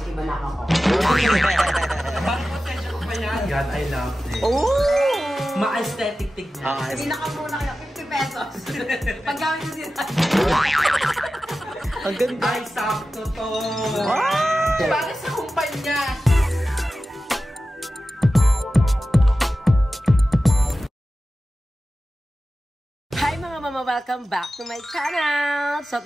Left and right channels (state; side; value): normal; both; correlation 0.94